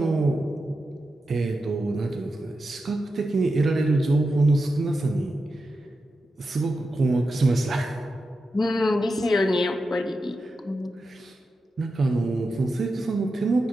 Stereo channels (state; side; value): normal; both; correlation 0.89